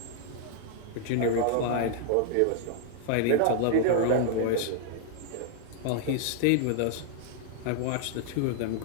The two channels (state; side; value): different; both; correlation -0.01